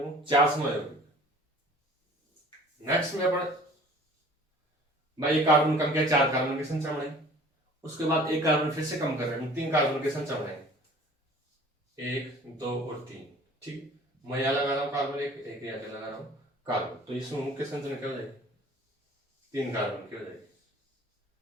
4 समय यौगिक। नेक्स्ट में अपन भाई एक कार्बन कम किया, 4 कार्बन की संख्या बढ़ाई, उसके बाद एक कार्बन फिर से कम कर रहे हैं, 3 कार्बन की संख्या बढ़ाएंगे, 1 2 और 3, ठीक। मैं यहाँ लगा रहा हूँ कार्बन, एक यहाँ लगा रहा हूँ कार्बन, तो इस समूह की संरचना क्या हो जाएगी, 3 कार्बन की हो जाएगी।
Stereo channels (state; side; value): normal; both; correlation 0.48